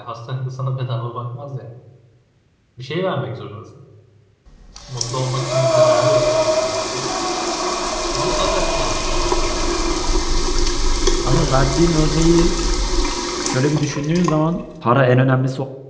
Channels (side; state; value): both; identical; correlation 1.00